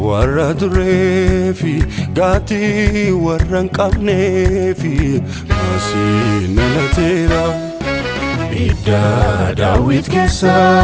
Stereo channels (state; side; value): identical; both; correlation 1.00